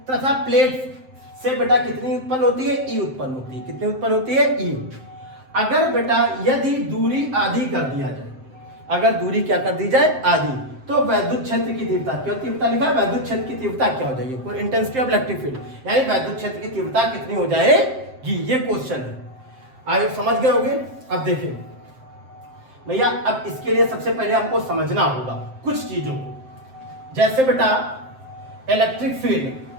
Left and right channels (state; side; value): late; left; 7.6 ms